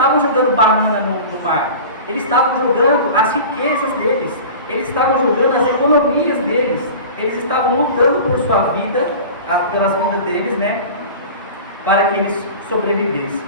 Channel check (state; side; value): inverted; both; correlation -0.36